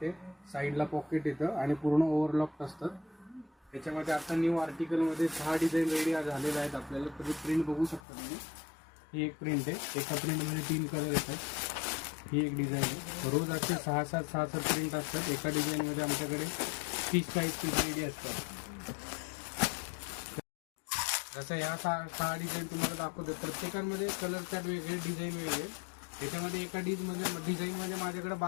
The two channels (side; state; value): right; drops out; at 8.0 s